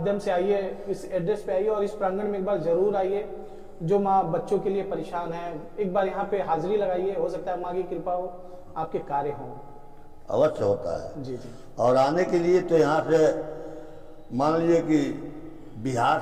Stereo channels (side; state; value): both; identical; correlation 1.00